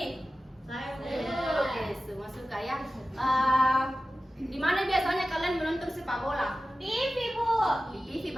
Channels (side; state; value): both; normal; correlation 0.94